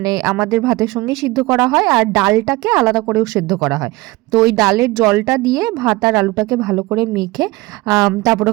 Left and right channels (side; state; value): left; quieter; 21.0 dB